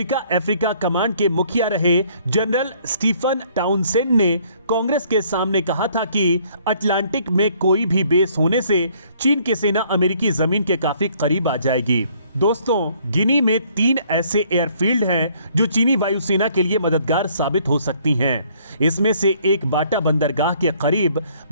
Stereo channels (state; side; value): inverted; both; correlation -0.62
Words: अफ्रीका कमांड के मुखिया रहे जनरल स्टीफन टाउनसेंड ने कांग्रेस के सामने कहा था कि अटलांटिक में कोई भी बेस होने से चीन की सेना अमेरिकी जमीन के काफी करीब आ जाएगी। दोस्तों, गिनी में 3 ऐसे एयरफील्ड हैं जो चीनी वायुसेना के लिए मददगार साबित हो सकती हैं। इसमें से एक बाटा बंदरगाह के करीब,